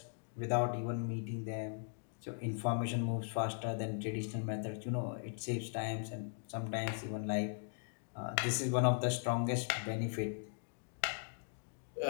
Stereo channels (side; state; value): right; silent; digital silence